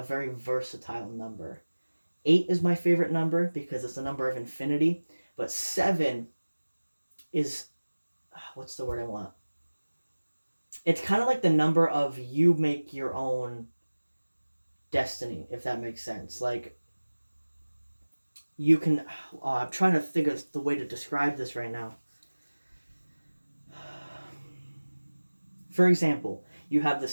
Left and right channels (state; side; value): inverted; both; correlation -1.00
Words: very versatile number. 8 is my favorite number because it's the number of infinity. But 7 is, what's the word I want? It's kind of like the number of you make your own destiny, if that makes sense. Like, you can, I'm trying to think of the way to describe this right now. For example, you have the